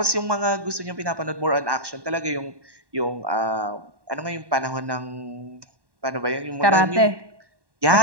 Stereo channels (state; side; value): late; left; 1.1 ms